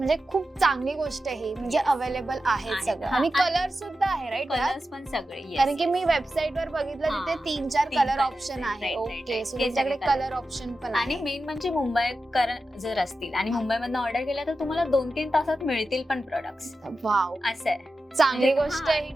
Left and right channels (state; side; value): normal; both; correlation 0.92